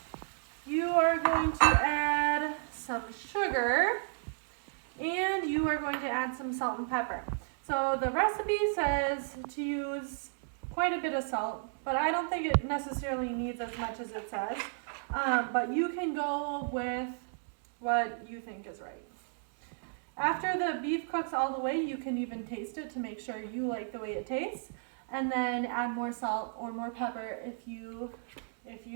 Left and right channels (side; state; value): left; silent; digital silence